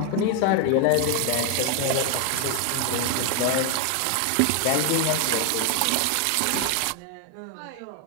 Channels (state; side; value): different; both; correlation 0.01